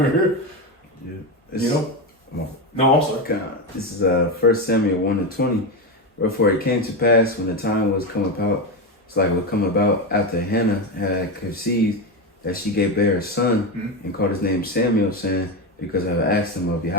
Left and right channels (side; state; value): both; normal; correlation 0.14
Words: Yeah. You know? Come on. No, I'm sorry. This is 1 Samuel 1:20. Wherefore it came to pass when the time was come about, it's like it would come about after Hannah had conceived, that she gave bear a son and called his name Samuel, saying, because I have asked him of